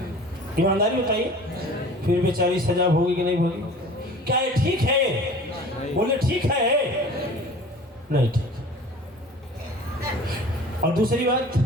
ईमानदारी बताइए, फिर बेचारी सजा भोगी कि नहीं भोगी? क्या ये ठीक है? बोले ठीक है, नहीं ठीक। और दूसरी बात,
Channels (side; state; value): both; normal; correlation 0.44